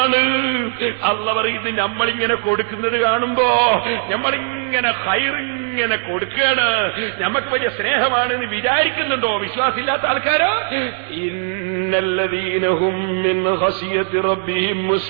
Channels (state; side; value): silent; left; digital silence